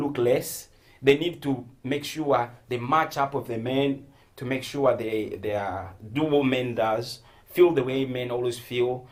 look less. They need to make sure they match up with the men, to make sure they are, do what men does, feel the way men always feel,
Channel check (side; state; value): both; identical; correlation 1.00